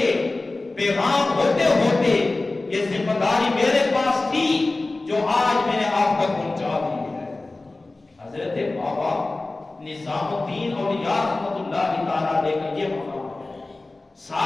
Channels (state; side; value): quieter; right; 3.1 dB